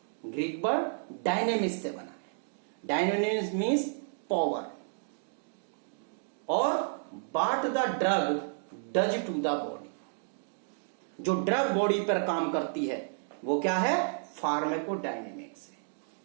Greek word dynamics से बना है. Dynamics means power. और what the drug does to the body, जो ड्रग बॉडी पर काम करती है वो क्या है? फार्माकोडायनेमिक्स है.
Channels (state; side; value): silent; left; digital silence